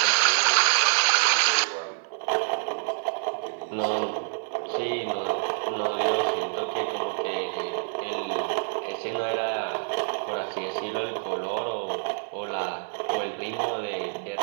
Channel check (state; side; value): silent; left; 59 dB below the other